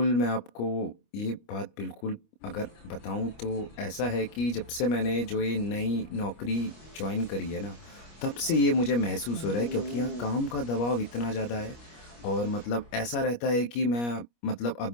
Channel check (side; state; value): right; late; 25 ms